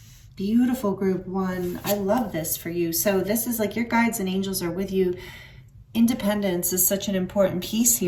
Beautiful group one. I love this for you. So this is like your guides and angels are with you. Independence is such an important piece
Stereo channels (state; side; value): identical; both; correlation 1.00